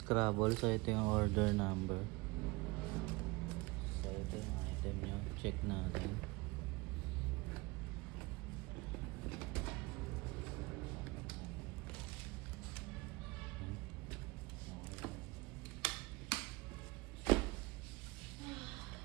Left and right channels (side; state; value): left; quieter; 24.1 dB